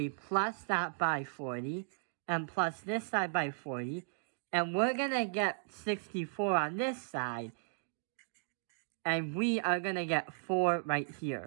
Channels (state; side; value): silent; left; digital silence